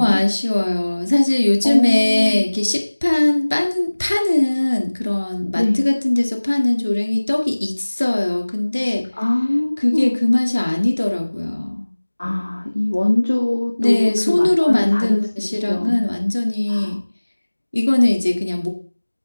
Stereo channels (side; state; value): both; inverted; correlation -1.00